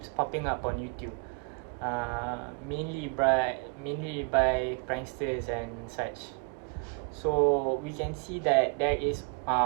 popping up on YouTube, mainly by pranksters and such. So we can see that there is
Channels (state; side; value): quieter; left; 36.4 dB